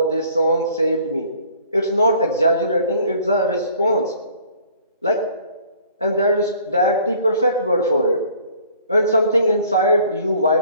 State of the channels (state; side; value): inverted; both; correlation -0.55